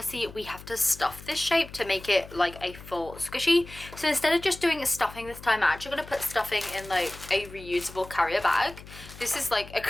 we have to stuff this shape to make it like a full squishy. So instead of just doing a stuffing this time, I'm actually going to put stuffing in like a reusable carrier bag. This is like a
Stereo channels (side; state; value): left; noise; hum, 17 dB below the sound